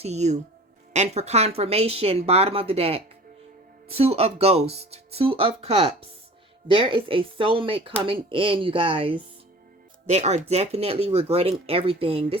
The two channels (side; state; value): both; normal; correlation 0.42